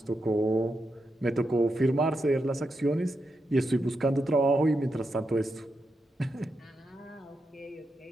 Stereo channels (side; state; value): both; normal; correlation 0.85